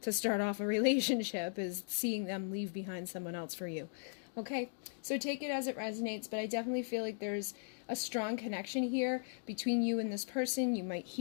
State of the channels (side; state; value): right; silent; digital silence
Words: to start off a relationship, is seeing them leave behind someone else for you. Okay, so take it as it resonates, but I definitely feel like there's a strong connection here between you and this person. You might